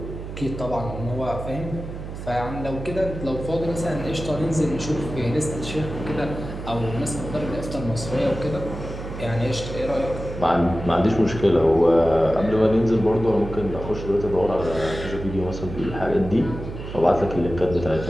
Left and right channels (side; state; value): right; noise; hum, 9 dB below the sound